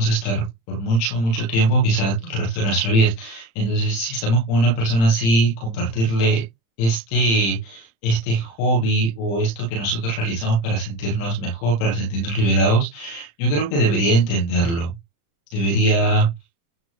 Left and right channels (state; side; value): late; right; 35 ms